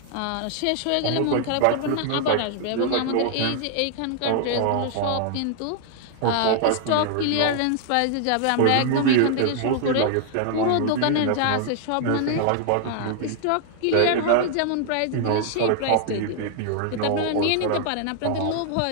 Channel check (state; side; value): different; both; correlation 0.00